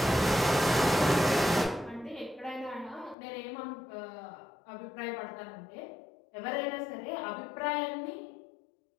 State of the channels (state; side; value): drops out; right; at 3.2 s